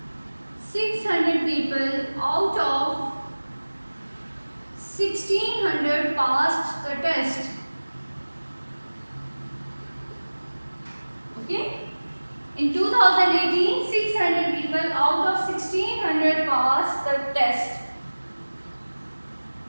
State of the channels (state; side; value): inverted; both; correlation -1.00